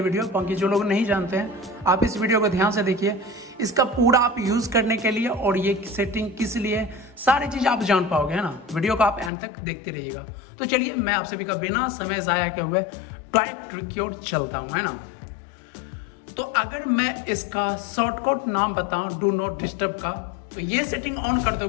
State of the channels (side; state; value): right; drops out; at 9.3 s